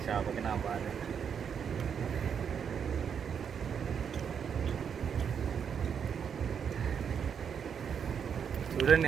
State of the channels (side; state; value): left; quieter; 7.4 dB